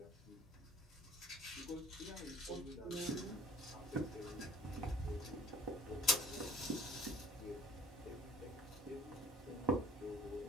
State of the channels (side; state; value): both; normal; correlation 0.50